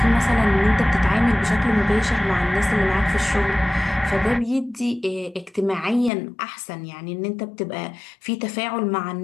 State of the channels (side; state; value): right; drops out; at 6.1 s